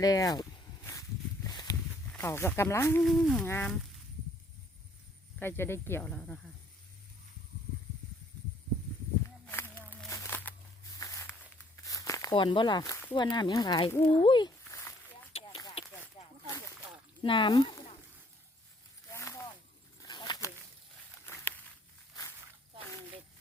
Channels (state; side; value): normal; both; correlation 0.63